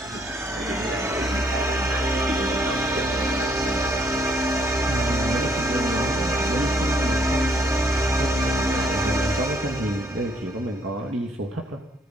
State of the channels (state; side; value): normal; both; correlation 0.67